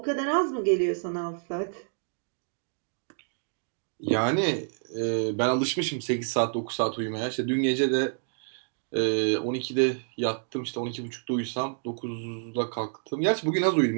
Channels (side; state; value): left; silent; digital silence